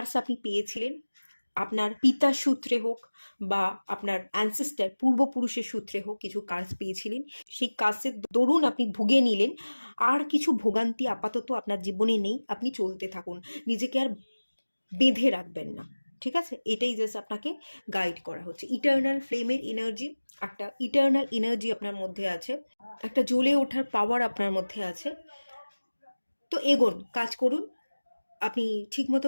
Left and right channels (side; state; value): both; inverted; correlation -1.00